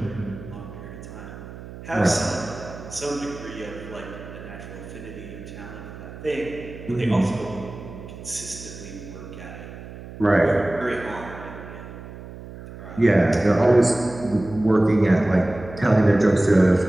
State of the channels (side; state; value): right; noise; hum, 14 dB below the sound